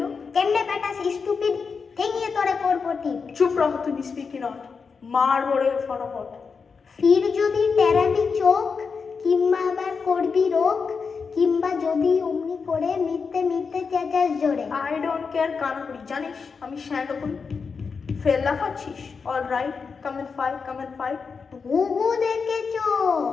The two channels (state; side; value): quieter; right; 5.3 dB